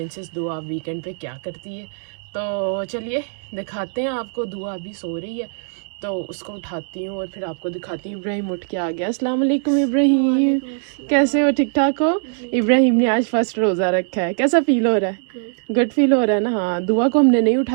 दुआ वीकेंड पे क्या करती है। तो चलिए दिखाते हैं आपको। दुआ अभी सो रही है तो उसको उठाती हूँ और फिर आपको दिखाती हूँ। इब्राहिम उठ के आ गया। अस्सलाम वालेकुम इब्राहिम, कैसे हो? ठीक ठाक हो? इब्राहिम ने आज फर्स्ट रोज़ा रखा है। कैसा फील हो रहा है? गुड फील हो रहा है ना? हाँ, दुआ को हमने नहीं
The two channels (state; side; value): silent; left; 64 dB below the other